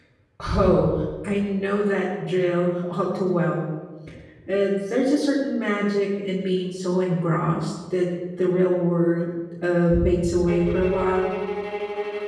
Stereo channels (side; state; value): both; identical; correlation 1.00